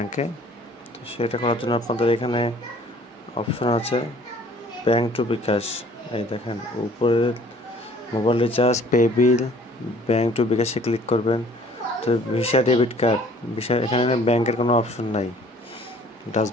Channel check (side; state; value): both; normal; correlation 0.54